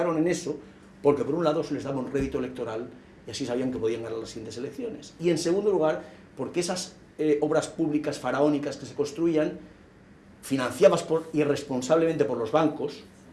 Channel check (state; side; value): identical; both; correlation 1.00